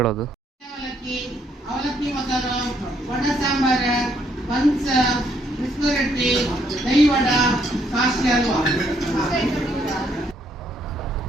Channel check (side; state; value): both; normal; correlation 0.71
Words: ಅವಲಕ್ಕಿ ಮೊಸರು, ವಡ ಸಾಂಬಾರ, ಬನ್ಸ್, ಬಿಸ್ಕು ರೊಟ್ಟಿ, dahi vada, Kashi halwa.